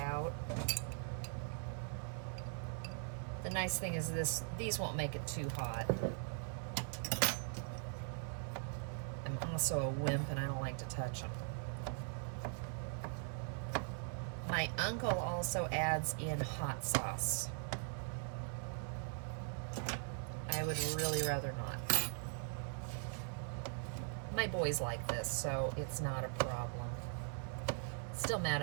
The nice thing is these won't make it too hot. I'm also a wimp and I don't like to touch them. My uncle also adds in hot sauce. I would really rather not. My boys like this, so it's not a problem. Still mad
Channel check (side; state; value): left; silent; 50 dB below the other